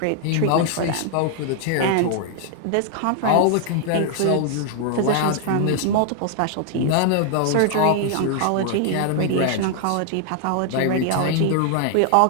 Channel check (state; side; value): different; both; correlation 0.00